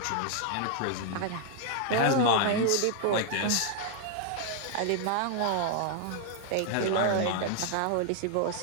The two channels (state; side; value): different; both; correlation 0.00